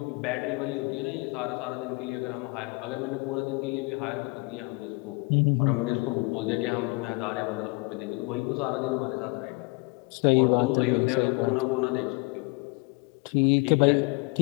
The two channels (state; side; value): quieter; right; 28.1 dB